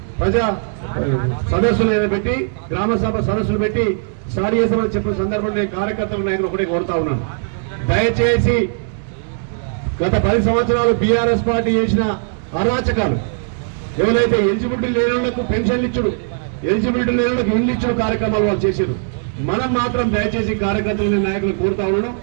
ప్రజా సదస్సులు పెట్టి గ్రామ సభ సదస్సులు పెట్టి స్టార్ట్ చేస్తామని చెప్పిన సందర్భంలో కార్యకర్తలు నాయకులు ఒకటే కోరుతా ఉన్నాను, దయచేసి గత 10 సంవత్సరాలు బీఆర్ఎస్ పార్టీ చేసిన అరాచకాలు ఎవరైతే ఎలిజిబిలిటీ లేని వాళ్లకు పెన్షన్లు ఇచ్చుడు, ఎలిజిబిలిటీ లేని వాళ్లకు ఇల్లు ఇచ్చుడు కార్యక్రమాలు వాళ్ళు చేశారు. మనం మాత్రం దయచేసి కార్యకర్తలు నాయకులు కోరుతా ఉన్నాను,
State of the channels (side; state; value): left; silent; 67 dB below the other